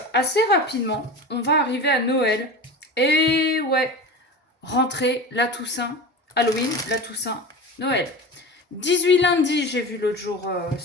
assez rapidement, on va arriver à Noël. Et ouais, rentrée, la Toussaint, Halloween, la Toussaint, Noël. 18 lundi, j'ai vu l'autre jour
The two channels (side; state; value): both; normal; correlation 0.31